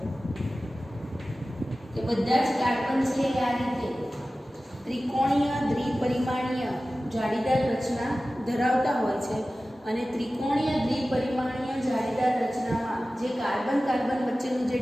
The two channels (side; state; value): both; normal; correlation 0.96